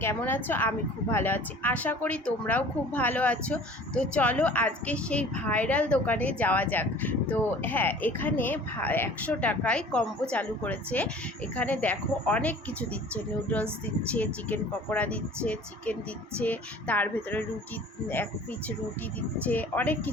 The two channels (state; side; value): normal; both; correlation 0.47